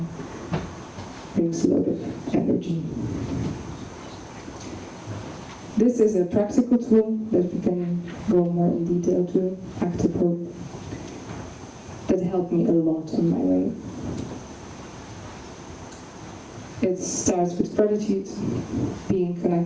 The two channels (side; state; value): both; identical; correlation 1.00